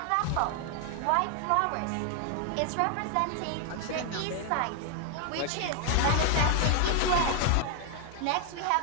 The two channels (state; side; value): different; both; correlation 0.00